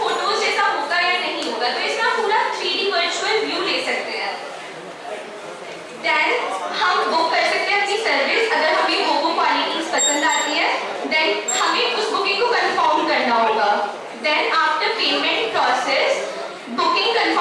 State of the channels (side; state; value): both; identical; correlation 1.00